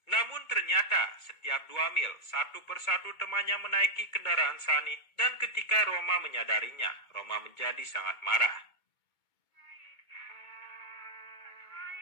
Namun ternyata setiap 2 mil satu persatu temannya menaiki kendaraan Sani dan ketika Roma menyadarinya, Roma menjadi sangat marah.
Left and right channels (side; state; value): right; late; 2.2 ms